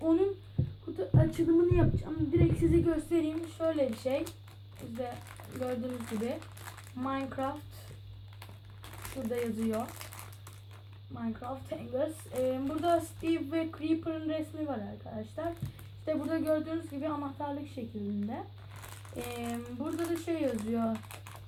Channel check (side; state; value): both; identical; correlation 1.00